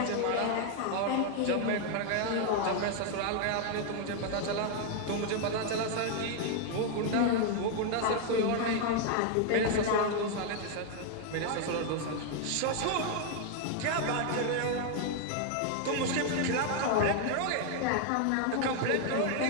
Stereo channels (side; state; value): both; different; correlation 0.00